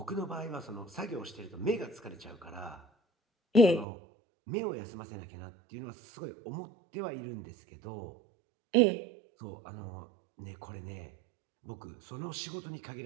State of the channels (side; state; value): left; drops out; at 3.9 s